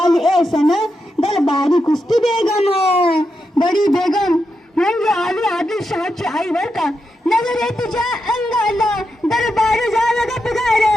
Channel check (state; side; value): normal; both; correlation 0.86